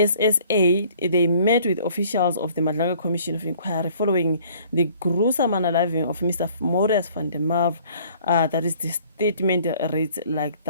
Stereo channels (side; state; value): both; inverted; correlation -0.56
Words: they met with officials of the Madlaga Commission of Inquiry following the gruesome unaliving of Mr. Marius van der Merwe. That is the statement reads like